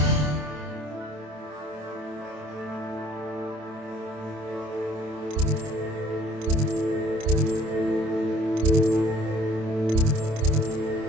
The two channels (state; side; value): late; left; 27 ms